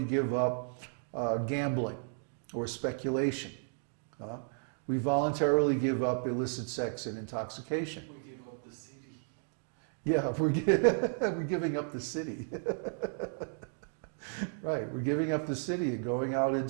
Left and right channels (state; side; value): silent; left; 55 dB below the other